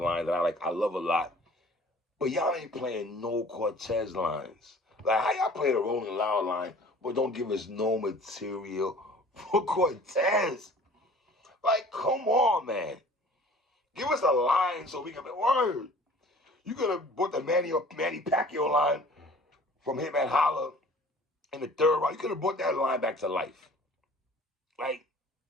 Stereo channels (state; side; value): normal; both; correlation 0.48